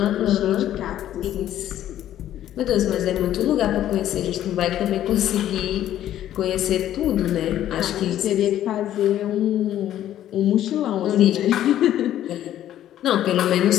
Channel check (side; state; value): right; quieter; 12.0 dB